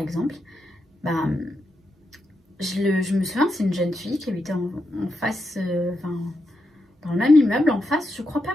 je me souviens, c'est une jeune fille qui habitait en face, dans le même immeuble en face, je crois pas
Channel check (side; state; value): both; normal; correlation 0.84